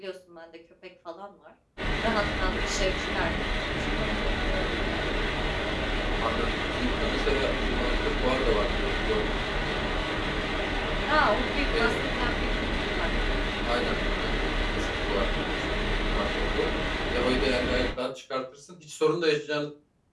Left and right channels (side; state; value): both; identical; correlation 1.00